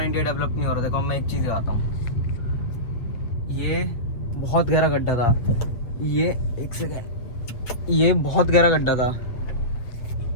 इंडिया डेवलप नहीं हो रहा। देखो मैं एक चीज़ बताता हूँ, ये बहुत गहरा गड्ढा था, ये एक सेकेंड, ये बहुत गहरा गड्ढा था,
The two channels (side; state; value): right; late; 8.3 ms